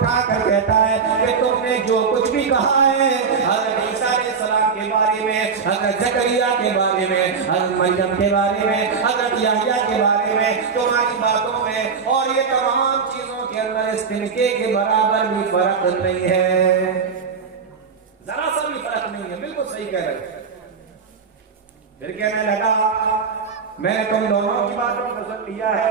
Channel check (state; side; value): quieter; left; 5.7 dB